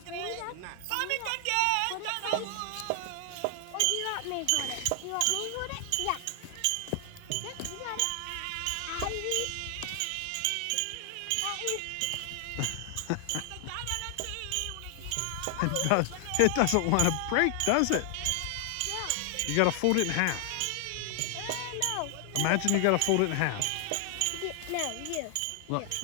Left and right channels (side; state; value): both; different; correlation 0.00